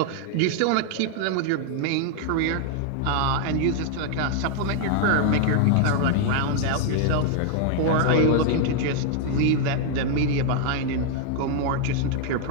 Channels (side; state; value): both; different; correlation 0.00